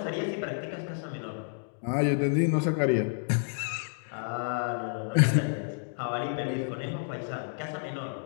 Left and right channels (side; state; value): right; silent; digital silence